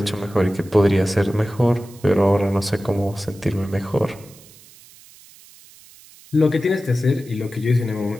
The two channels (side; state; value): right; noise; hiss, 23 dB below the sound